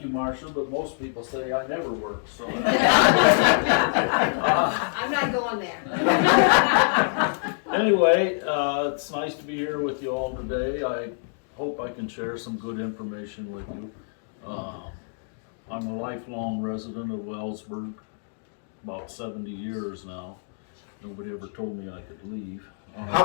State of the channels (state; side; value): silent; right; digital silence